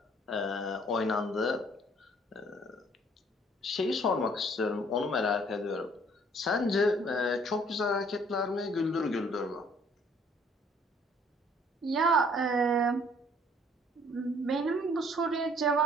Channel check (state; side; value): normal; both; correlation 0.59